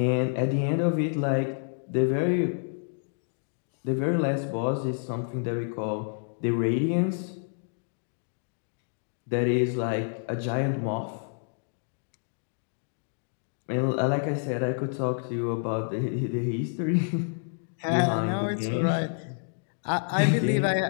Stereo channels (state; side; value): silent; right; digital silence